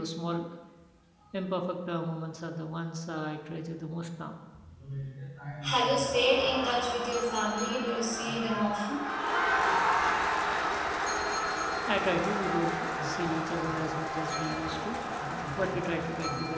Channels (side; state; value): both; identical; correlation 1.00